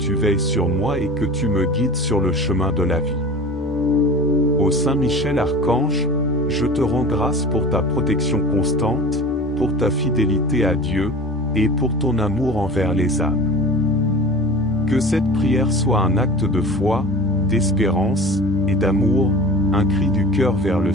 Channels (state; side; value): normal; both; correlation 0.37